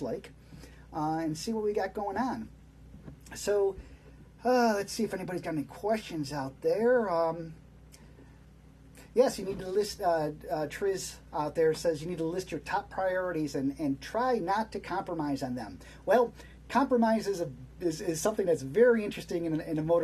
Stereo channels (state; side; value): identical; both; correlation 1.00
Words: and see what we got going on. So, let's see if anybody's got any questions out there. Yes, you need to list, Triz out there says you need to list your top priorities and try not to compromise on them. Well, compromise is something that's very interesting in a